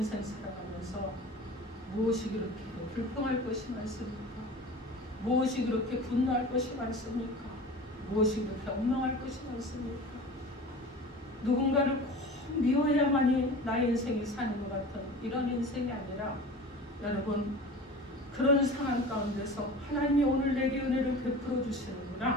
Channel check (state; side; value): normal; both; correlation 0.37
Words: 살아가면서 무엇이 그렇게 불평할 것이 많습니까? 무엇이 그렇게 분노할 것이 많습니까? 무엇이 그렇게 엉망할 것이 많습니까? 누군가를 꼭 미워해야만이 나의 인생이 사는 것 같은 이런 인생이 아니라 여러분 그런 상황 가운데서 하나님이 오늘 내게 은혜를 베풀어